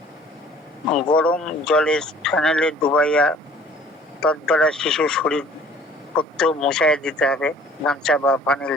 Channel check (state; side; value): normal; both; correlation 0.52